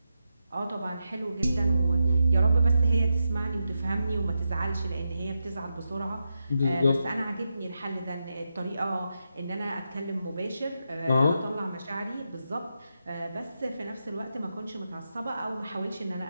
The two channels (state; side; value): inverted; both; correlation -0.87